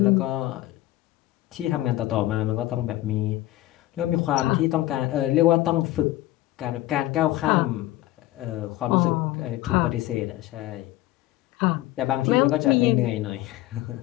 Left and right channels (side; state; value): right; quieter; 16.2 dB